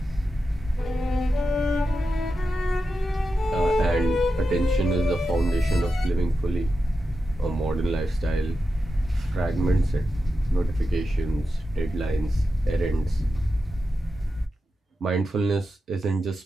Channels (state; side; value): normal; both; correlation 0.90